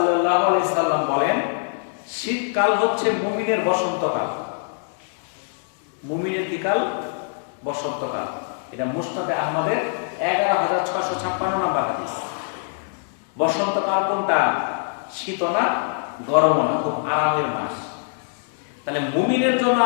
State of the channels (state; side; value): silent; right; 63 dB below the other